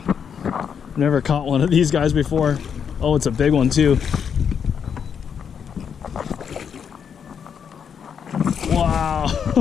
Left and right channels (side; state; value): right; quieter; 7.3 dB